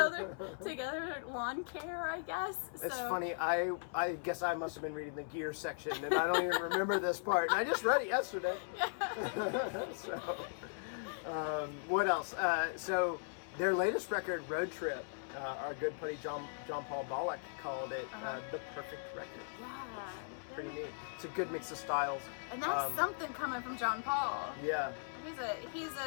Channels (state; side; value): silent; right; 52 dB below the other